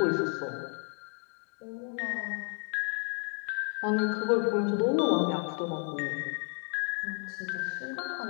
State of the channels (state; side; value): quieter; right; 37.1 dB